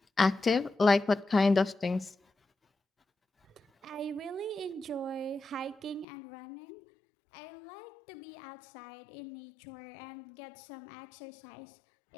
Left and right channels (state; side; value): drops out; right; at 6.1 s